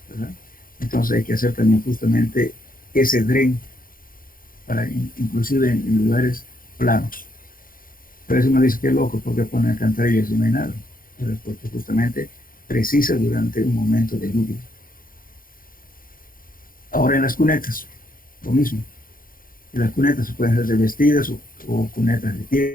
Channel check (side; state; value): right; late; 0.41 ms